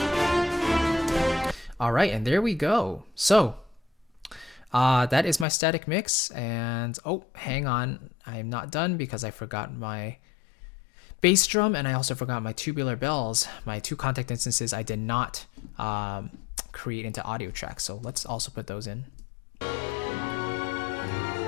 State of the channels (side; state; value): right; drops out; at 5.5 s